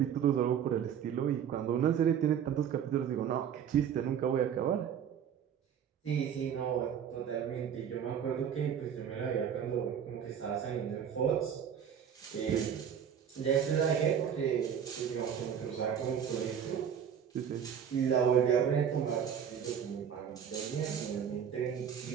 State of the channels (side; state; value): left; quieter; 8.3 dB